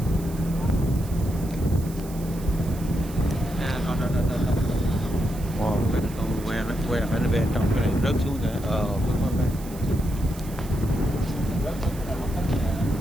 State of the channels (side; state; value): right; noise; hiss, 18 dB below the sound